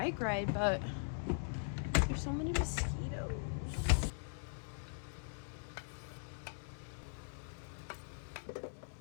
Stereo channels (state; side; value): silent; right; digital silence